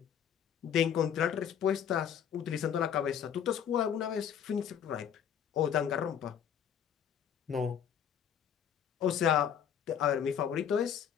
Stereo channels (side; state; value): right; quieter; 8.5 dB